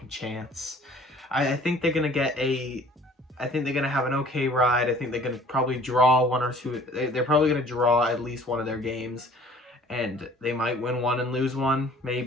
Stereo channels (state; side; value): normal; both; correlation 0.52